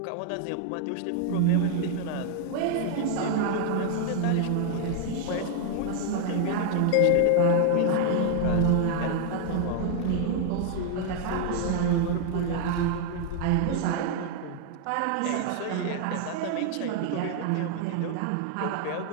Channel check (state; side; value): different; both; correlation 0.00